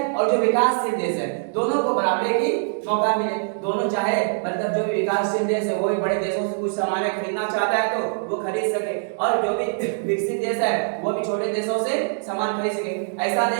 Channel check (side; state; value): left; silent; digital silence